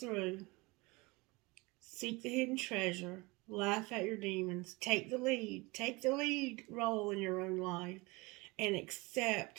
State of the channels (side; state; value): left; quieter; 24.5 dB